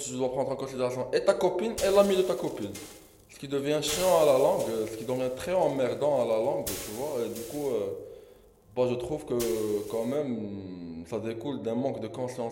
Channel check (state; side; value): identical; both; correlation 1.00